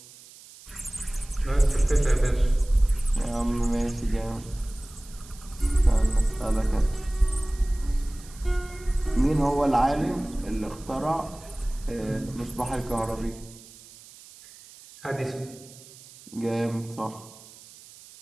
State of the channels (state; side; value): noise; right; hiss, 20 dB below the sound